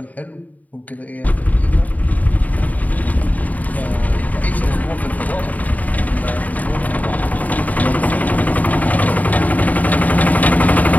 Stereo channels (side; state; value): right; late; 0.074 ms